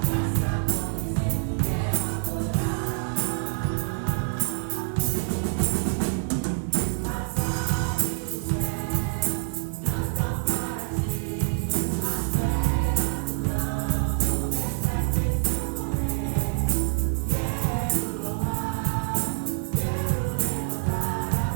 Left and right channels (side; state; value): left; silent; 61 dB below the other